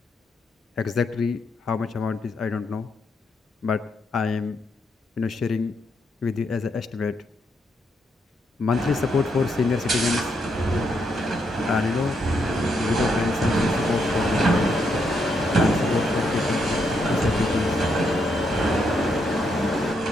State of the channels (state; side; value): normal; both; correlation 0.78